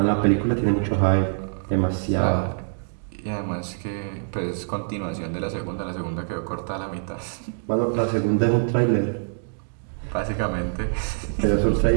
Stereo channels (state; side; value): silent; left; digital silence